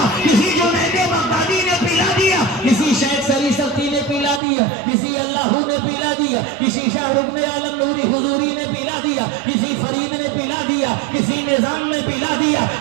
کسی جنید بغدادی نے پلا دیا، کسی شیخ سری سختی نے پلا دیا، کسی اللہ نے پلا دیا، کسی شاہ رکن عالم نوری حضوری نے پلا دیا، کسی فرید نے پلا دیا، کسی نظام نے پلا دیا،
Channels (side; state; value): left; drops out; at 4.4 s